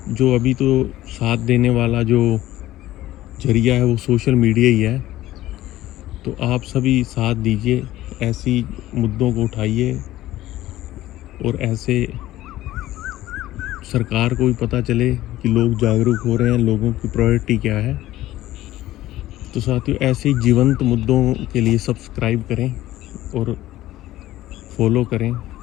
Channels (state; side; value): quieter; right; 15.2 dB